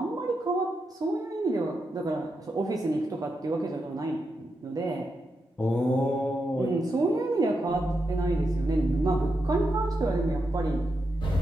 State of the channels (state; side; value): normal; both; correlation 0.85